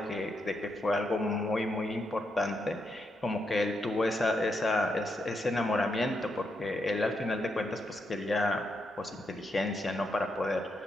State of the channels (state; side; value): normal; both; correlation 0.81